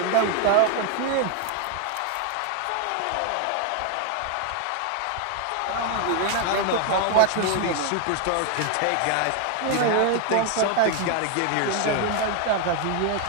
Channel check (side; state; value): both; different; correlation 0.01